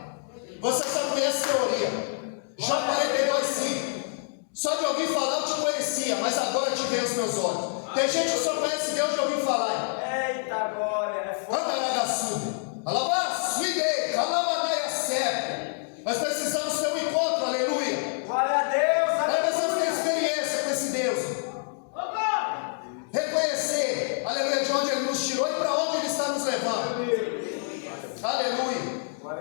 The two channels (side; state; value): right; silent; 60 dB below the other